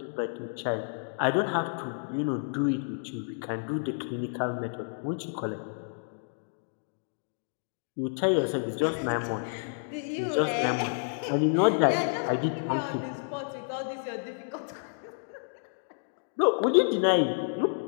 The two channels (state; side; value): silent; right; digital silence